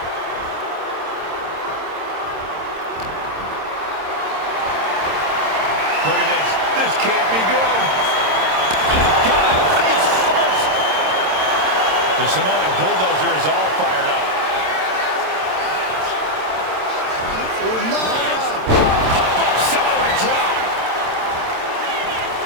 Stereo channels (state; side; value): late; left; 27 ms